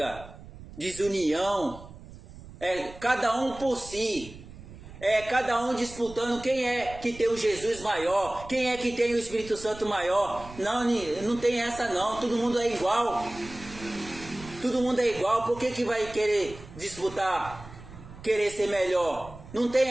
desunião, cada um por si, cada um disputando quem é que tem o Jesus maior, quem é que tem o Espírito Santo maior. Não tem essa não, todo mundo é igual, todo mundo é igual. Por que vai querer disputar, querer ser melhor? Não tem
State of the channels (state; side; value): noise; right; rumble, 16 dB below the sound